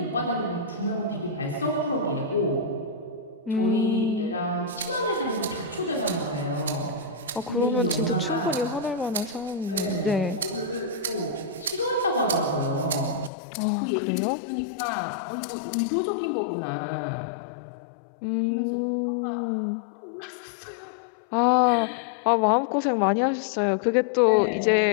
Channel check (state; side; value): drops out; right; at 13.3 s